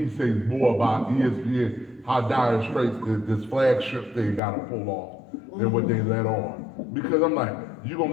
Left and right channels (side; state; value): right; drops out; at 4.4 s